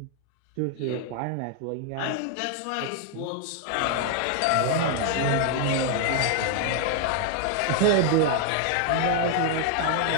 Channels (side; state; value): both; different; correlation 0.00